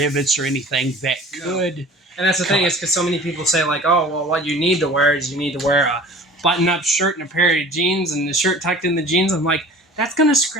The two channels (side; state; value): both; normal; correlation 0.44